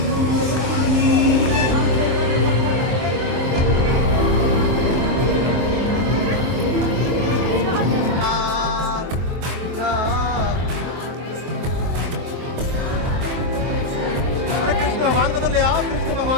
Krishna भगवान को तो ले आओ, कृष्ण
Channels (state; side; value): late; left; 23 ms